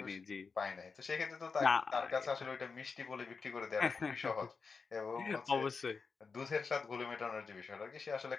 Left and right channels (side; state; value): right; quieter; 4.9 dB